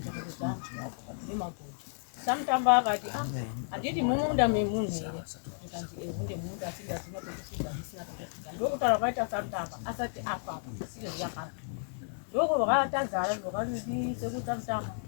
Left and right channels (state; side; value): silent; right; digital silence